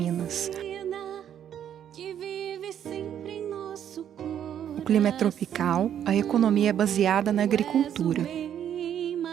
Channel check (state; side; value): quieter; left; 9.7 dB